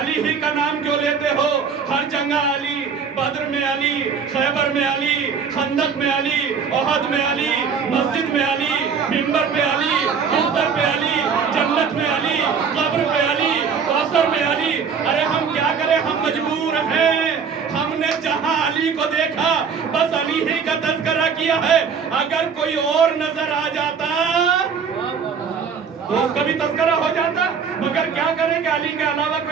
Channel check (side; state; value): left; quieter; 6.2 dB